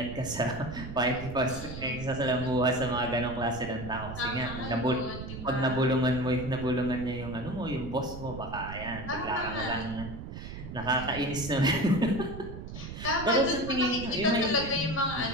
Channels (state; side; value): noise; right; rumble, 9 dB below the sound